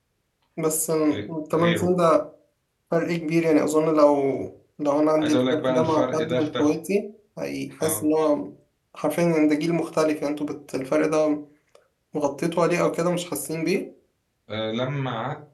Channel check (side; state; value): both; identical; correlation 1.00